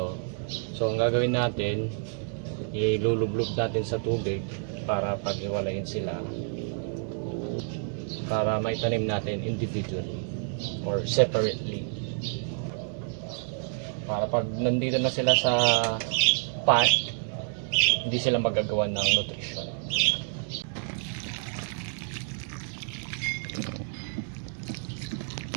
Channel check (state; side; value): silent; left; 59 dB below the other